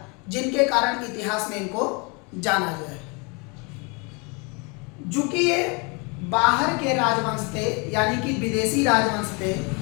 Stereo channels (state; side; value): quieter; right; 30.7 dB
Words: जिनके कारण इतिहास में इनको जाना जाए। चूंकि ये बाहर के राजवंश थे, यानी कि विदेशी राजवंश थे,